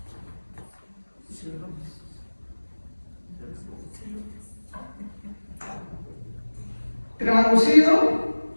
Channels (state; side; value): inverted; both; correlation -1.00